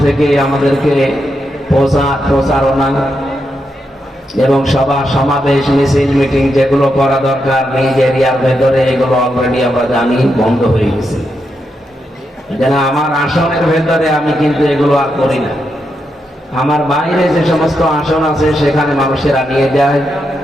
থেকে আমাদেরকে প্রচারণা এবং সভা সমাবেশ মিছিল মিটিং যেগুলো করা দরকার নিজ এরিয়ার ভেতরে, এগুলো অলরেডি আমরা জানি বন্ধ হয়ে গেছে। যেন আমার আসনের ভেতরে আমি কিন্তু এগুলো আর করি না। আমার বাইরে যে সমস্ত আসন আছে সেখানে মানুষেরা নিয়ে যায়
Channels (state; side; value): normal; both; correlation 0.84